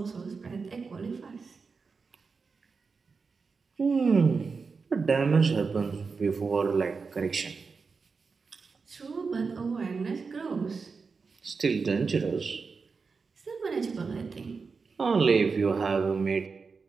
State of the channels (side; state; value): left; quieter; 4.9 dB